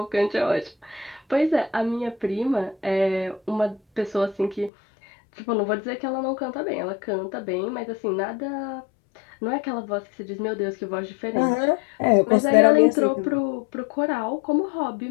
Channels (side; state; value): right; drops out; at 4.7 s